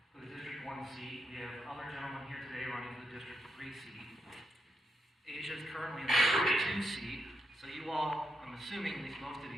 for the District 1 seat. We have other gentlemen here today running for the District 3 seat. Asia is currently in the District 2 seat. So you all, I'm assuming, at least most of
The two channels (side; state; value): both; normal; correlation 0.82